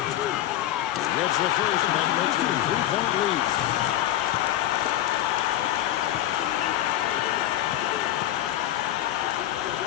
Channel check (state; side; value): quieter; right; 13.1 dB